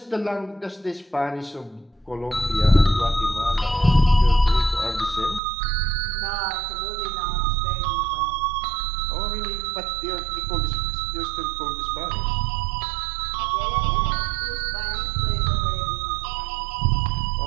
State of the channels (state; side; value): drops out; left; at 5.4 s